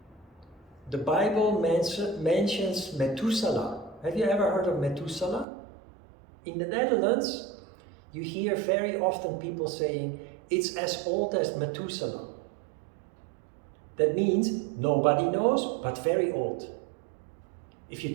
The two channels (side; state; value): left; drops out; at 5.5 s